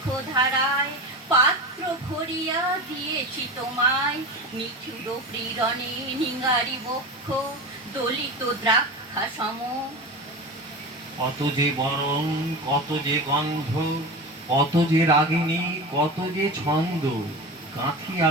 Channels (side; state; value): both; normal; correlation 0.27